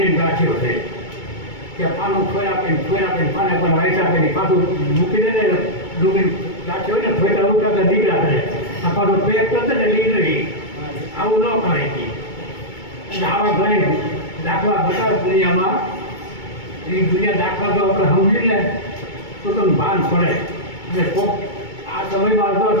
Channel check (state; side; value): late; right; 2.2 ms